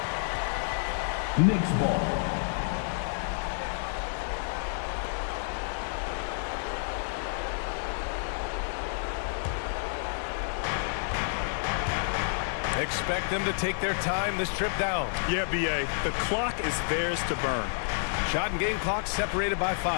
Knicks ball. Expect them to take their time this trip down. Yeah, B.A., the clock is theirs to burn. Shot and game clock separated by 5.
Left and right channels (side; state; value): right; silent; 58 dB below the other